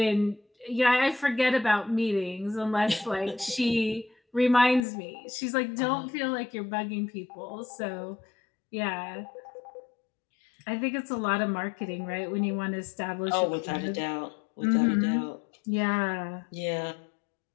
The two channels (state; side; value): drops out; right; at 4.9 s